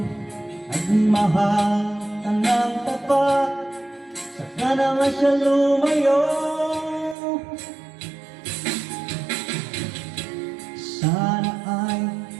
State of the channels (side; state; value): left; drops out; at 7.2 s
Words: at mahal ka ng tapat, saka naman siya lumayo. Sana ay